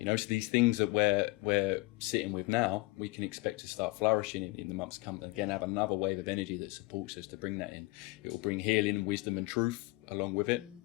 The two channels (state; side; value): quieter; right; 22.7 dB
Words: know, so these things that we're sitting with now, we can expect to start flourishing in the months to come. And again, have another wave of energy that supports us to bring that in. It will bring healing, wisdom and truth along with it.